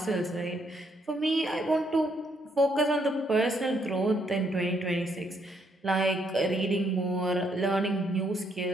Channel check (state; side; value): normal; both; correlation 0.73